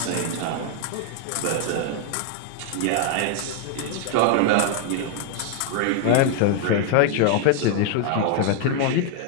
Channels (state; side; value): different; both; correlation 0.00